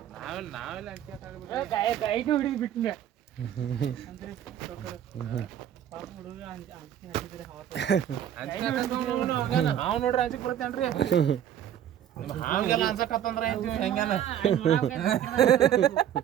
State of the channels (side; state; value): left; quieter; 10.3 dB